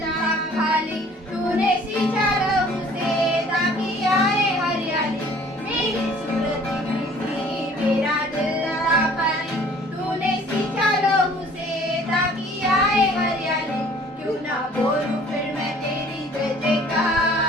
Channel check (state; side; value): normal; both; correlation 0.53